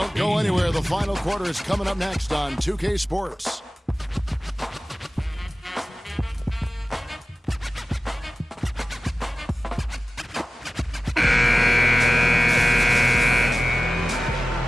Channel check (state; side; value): normal; both; correlation 0.97